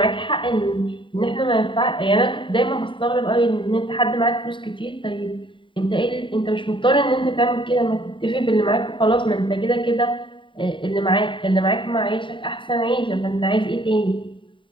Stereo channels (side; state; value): right; late; 0.24 ms